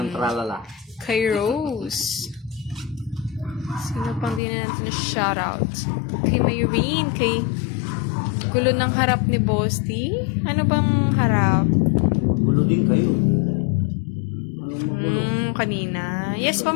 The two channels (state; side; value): drops out; right; at 4.4 s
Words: tralala. Kay Rose. Sino pang di na natin na shoutout? Kay Mayrene, kay gulo ng harap ni Boss T. Ano bang harap? Gulo din kayo. Anong magulo? Kanina. Yes pa,